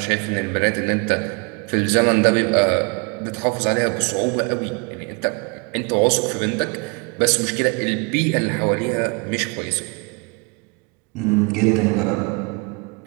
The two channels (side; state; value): left; quieter; 32.2 dB